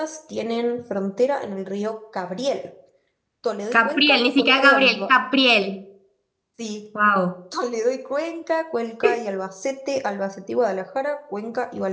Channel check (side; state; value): both; identical; correlation 1.00